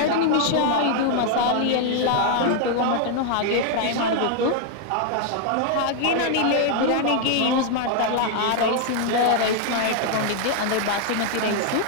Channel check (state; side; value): different; both; correlation 0.00